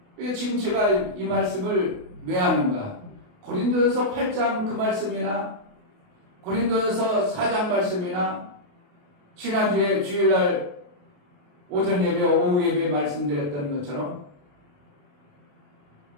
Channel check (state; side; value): late; left; 28 ms